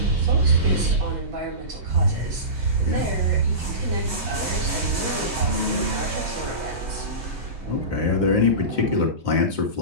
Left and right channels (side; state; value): left; late; 3.2 ms